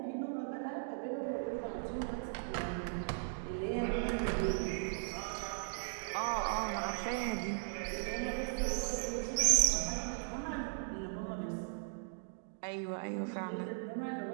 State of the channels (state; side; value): silent; left; digital silence